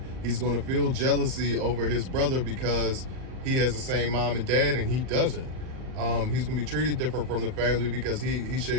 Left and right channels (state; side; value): late; left; 38 ms